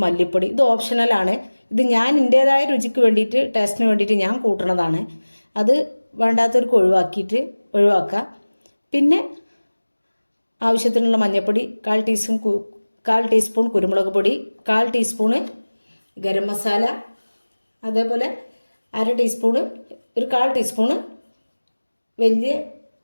മല്ലിപ്പൊടി. ഇത് ഓപ്ഷണലാണ്. ഇത് ഞാൻ എൻ്റേതായ രുചിക്ക് വേണ്ടിയിട്ട്, ടേസ്റ്റിന് വേണ്ടിയിട്ട് ഞാൻ കൂട്ടണതാണ്. അത് വേണ്ടാത്തവർക്ക് ഒഴിവാക്കുക. പിന്നെ ആവശ്യത്തിനുള്ള മഞ്ഞൾപ്പൊടി, 1/4 ടീസ്പൂൺ കുരുമുളക് പൊടി, 1/4 ടീസ്പൂണ് ഗരം മസാല, അതേപോലെ 1/2 ടീസ്പൂണ്, ഒരു 1/4 ടീസ്പൂണ് വലിയ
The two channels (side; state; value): both; inverted; correlation -1.00